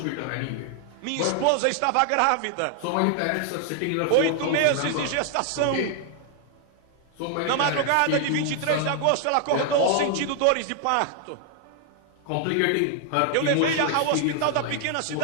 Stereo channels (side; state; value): both; different; correlation 0.00